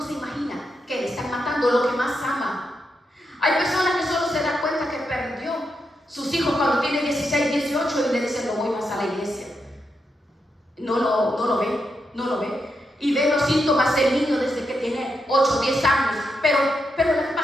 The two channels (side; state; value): both; normal; correlation 0.84